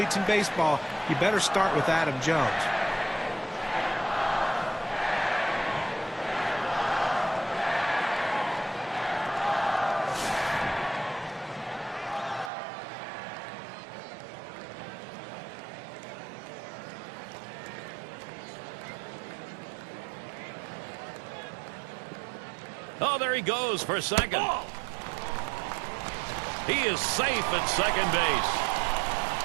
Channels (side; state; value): left; drops out; at 12.5 s